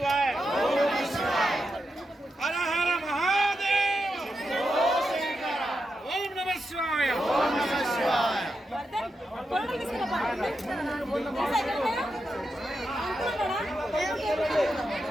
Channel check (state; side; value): normal; both; correlation 0.86